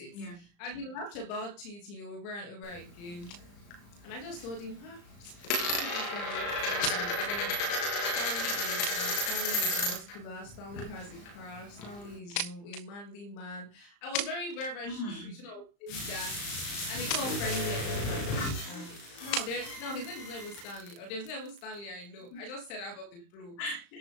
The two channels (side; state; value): right; late; 35 ms